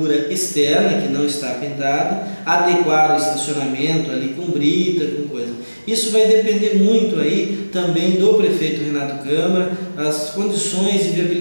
externa que não está pintada, adequar o estacionamento ali com brita, com coisa. Isso vai depender muito aí também do prefeito Renato Câmara, as condições de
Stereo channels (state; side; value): inverted; both; correlation -1.00